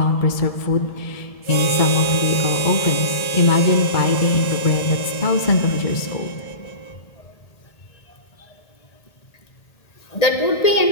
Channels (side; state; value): right; late; 1.7 ms